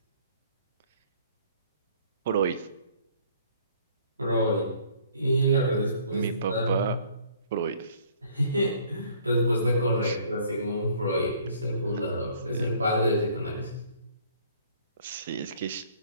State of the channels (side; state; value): both; inverted; correlation -0.58